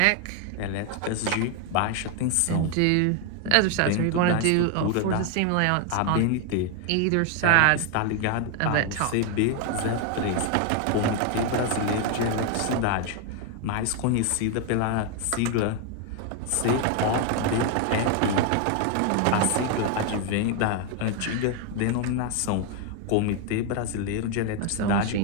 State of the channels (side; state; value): both; different; correlation 0.00